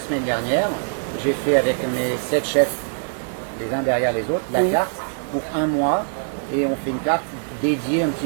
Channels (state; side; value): silent; left; digital silence